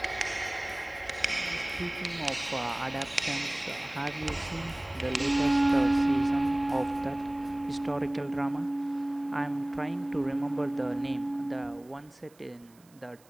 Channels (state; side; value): noise; right; hiss, 29 dB below the sound